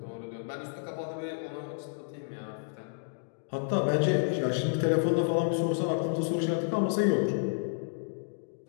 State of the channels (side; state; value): right; silent; digital silence